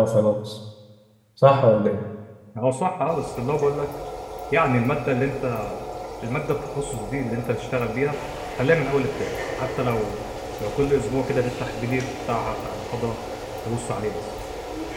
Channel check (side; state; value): both; identical; correlation 1.00